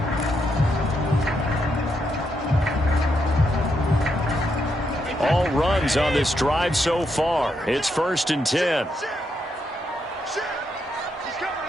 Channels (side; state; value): both; normal; correlation 0.80